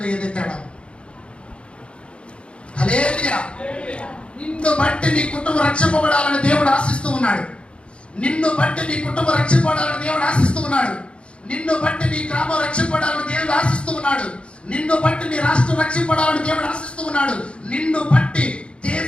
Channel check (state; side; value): late; right; 0.058 ms